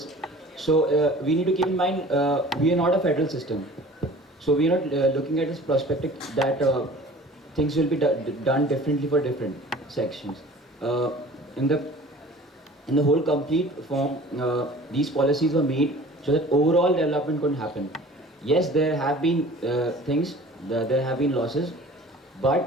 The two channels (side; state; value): both; normal; correlation 0.45